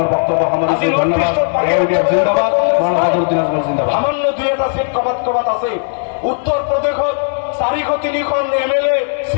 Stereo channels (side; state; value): right; silent; digital silence